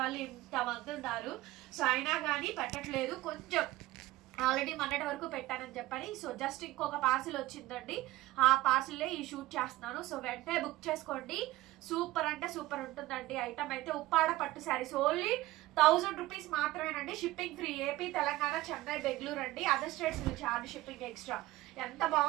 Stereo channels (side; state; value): left; quieter; 17.4 dB